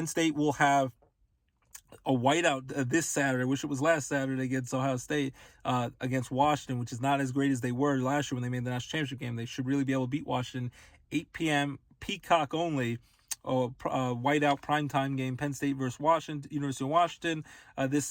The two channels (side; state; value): both; identical; correlation 1.00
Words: State will have a whiteout this Saturday. I wish it was last Saturday against Ohio State, against Washington, which is not as great as they were last year when they made the national championship game. They should really be able to beat Washington. 8 p.m. Peacock only. Whiteout primetime game, Penn State versus Washington, University of Washington, this